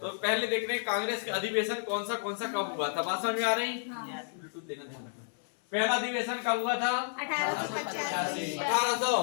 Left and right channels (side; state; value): right; silent; 57 dB below the other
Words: तो पहले देख रहे हैं कांग्रेस का अधिवेशन कौन सा कब हुआ था। बात समझ में आ रही? ब्लूटूथ लेना ध्यान रखना। पहला अधिवेशन कब हुआ था?